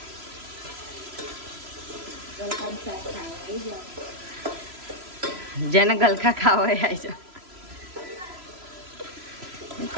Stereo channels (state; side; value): late; left; 3.0 ms